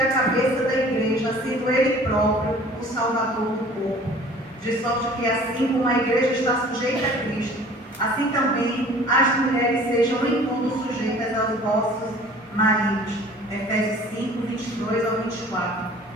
a cabeça da igreja, sendo Ele próprio o Salvador do corpo. De sorte que assim como a igreja está sujeita a Cristo, assim também as mulheres sejam em tudo sujeitas aos vossos maridos. Efésios 5, 22 ao 24.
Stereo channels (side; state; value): both; normal; correlation 0.48